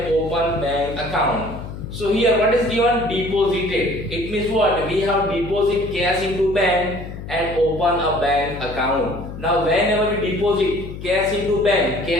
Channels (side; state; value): left; noise; hum, 10 dB below the sound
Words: open bank account. So here what is given? Deposited. It means what? We have deposit cash into bank and open a bank account. Now whenever we deposit cash into bank,